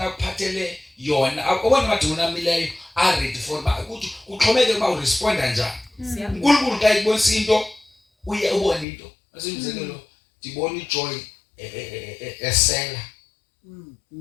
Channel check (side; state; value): right; drops out; at 8.8 s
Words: akuphathele yona akubona amadimoni amileyo are ready for ukuthi kuxhomeke ba uresponda njani uNkulunkulu xa ibonisa into uye ubone into asemzekelo dibona ijoy esela